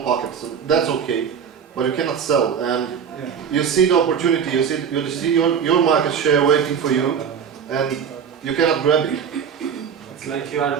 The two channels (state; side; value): quieter; left; 7.3 dB